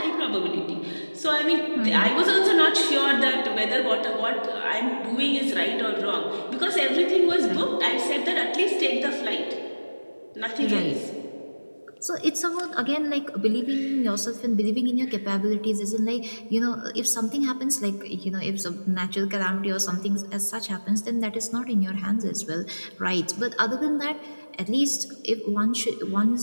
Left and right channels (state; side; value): inverted; both; correlation -1.00